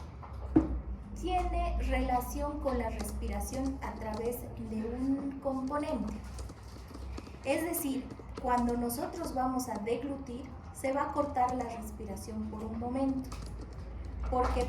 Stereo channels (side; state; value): both; identical; correlation 1.00